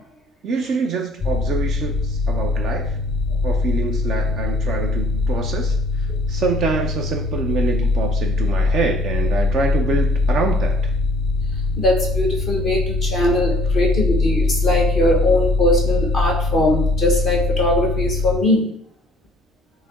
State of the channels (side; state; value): both; normal; correlation 0.57